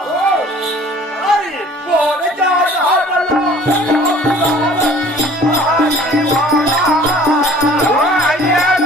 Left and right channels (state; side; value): normal; both; correlation 0.50